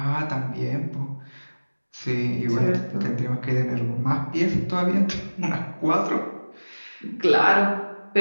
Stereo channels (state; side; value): inverted; both; correlation -1.00